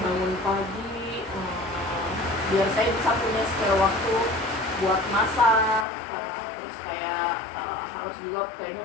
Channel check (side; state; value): right; drops out; at 5.9 s